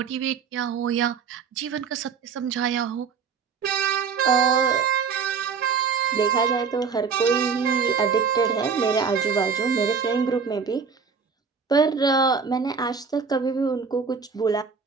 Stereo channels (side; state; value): left; quieter; 5.8 dB